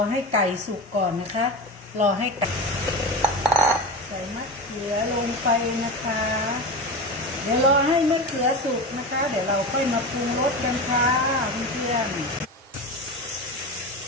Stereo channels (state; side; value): normal; both; correlation 0.25